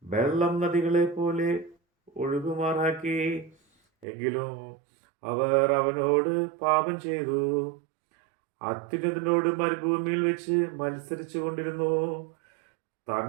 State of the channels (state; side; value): drops out; left; at 4.0 s